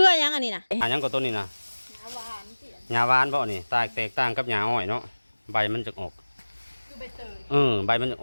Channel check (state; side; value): inverted; both; correlation -1.00